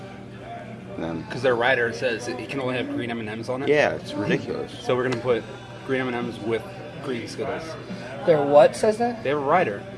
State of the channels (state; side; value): identical; both; correlation 1.00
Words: them. Because their rider says it can only have green M&Ms on it. Yeah, it's ridiculous. So we're gonna put green M&Ms with green Skittles. Their what says that? They have a rider